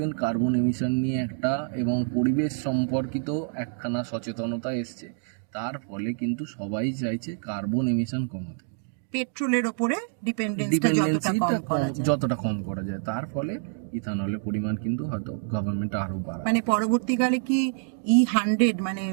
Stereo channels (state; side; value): silent; left; digital silence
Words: কার্বন এমিশন নিয়ে একটা এবং পরিবেশ সম্পর্কিত একখানা সচেতনতা এসছে, তার ফলে কিন্তু সবাই চাইছে কার্বন এমিশন কমাতে, পেট্রোলের উপরে ডিপেন্ডেন্সিটা যতটা কম করা যায়। তার ফলে ইথানলের পরিমাণ কিন্তু হয়তো গভর্নমেন্ট আরো বাড়াবে। মানে পরবর্তীকালে কি E100 মানে